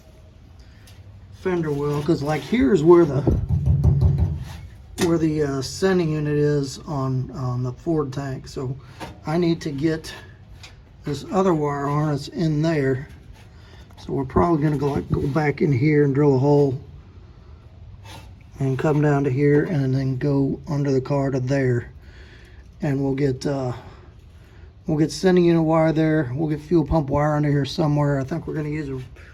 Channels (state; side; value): identical; both; correlation 1.00